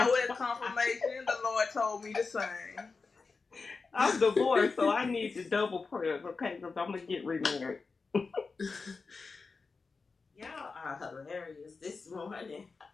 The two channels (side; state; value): right; quieter; 4.4 dB